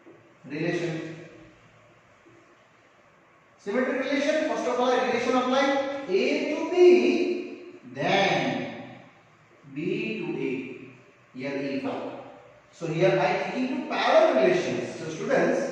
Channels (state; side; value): identical; both; correlation 1.00